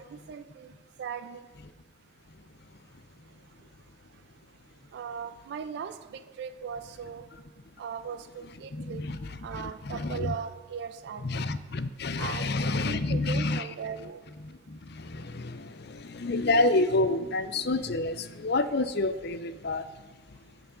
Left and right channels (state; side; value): normal; both; correlation 0.06